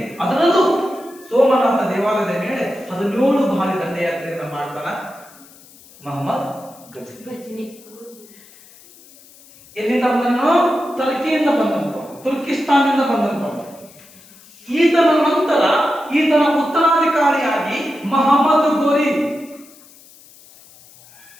ಅದರಲ್ಲೂ ಸೋಮನಾಥ ದೇವಾಲಯದ ಮೇಲೆ 17 ಬಾರಿ ದಂಡಯಾತ್ರೆಯನ್ನು ಮಾಡ್ತಾನ ಮೊಹಮ್ಮದ್ ಘಜ್ನಿ. ಎಲ್ಲಿಂದ ಬಂದನು? ಟರ್ಕಿಯಿಂದ ಬಂದಂತ, ತುರ್ಕಿಸ್ತಾನದಿಂದ ಬಂದಂತ. ಈತನ ನಂತರ ಈತನ ಉತ್ತರಾಧಿಕಾರಿಯಾಗಿ ಮೊಹಮ್ಮದ್ ಗೋರಿ.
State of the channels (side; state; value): left; noise; hiss, 24 dB below the sound